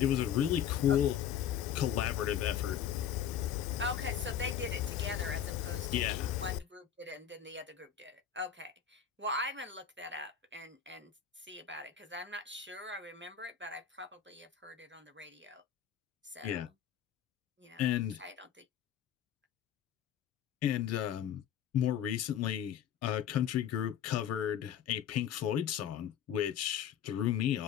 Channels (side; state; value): right; quieter; 9.2 dB